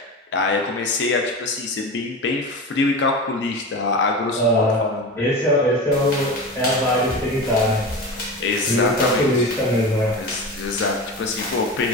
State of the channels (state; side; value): normal; both; correlation 0.27